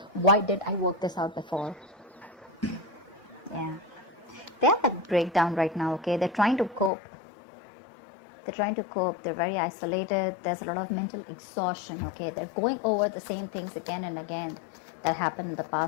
Why did I work this out before? Yeah. They have that breakdown right now, okay? They're trying to cope. They're very isolated. There's a lot of mental exhaustion, okay? They're going over the same things again and again that happened in the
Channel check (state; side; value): drops out; right; at 6.9 s